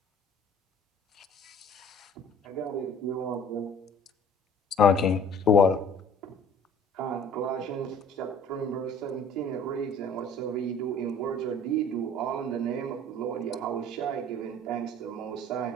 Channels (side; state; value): both; normal; correlation 0.50